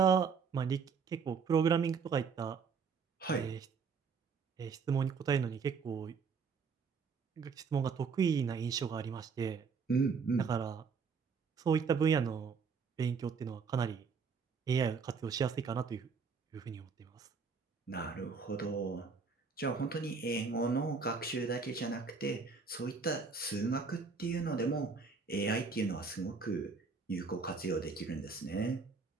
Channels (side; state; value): left; quieter; 5.4 dB